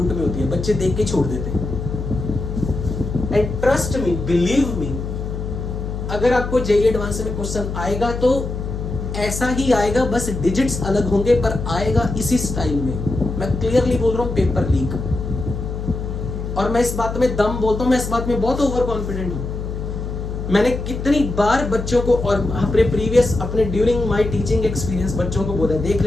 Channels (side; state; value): left; noise; hum, 5 dB below the sound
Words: में होती है, बच्चे देख के छोड़ देते हैं। And trust me, believe me, अगर आपको जेईई एडवांस में क्वेश्चन आएगा तो ऐसा ही आएगा, बस डिजिट्स अलग होंगे, पर आएगा इसी स्टाइल में। मैं क्लियरली बोल रहा हूं, पेपर लीक। और मैं इस बात में दम बोलता हूं, मैं इस बात में बहुत ओवर कॉन्फिडेंट हूं। मैंने कितनी बार बच्चों को और अपने प्रीवियस अपने ड्यूरिंग माय टीचिंग एक्सपीरियंस बच्चों को बोला, देख